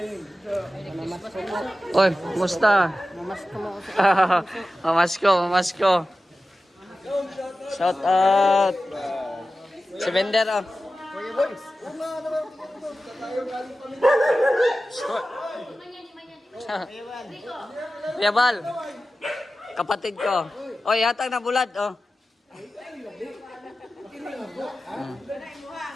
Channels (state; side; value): normal; both; correlation 0.94